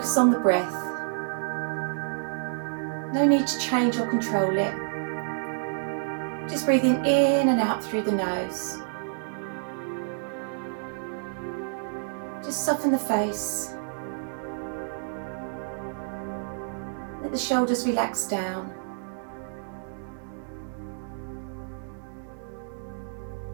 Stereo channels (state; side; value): silent; left; digital silence